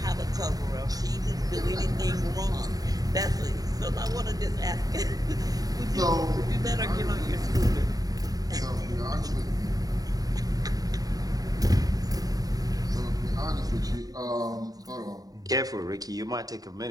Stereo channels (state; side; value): late; left; 0.18 ms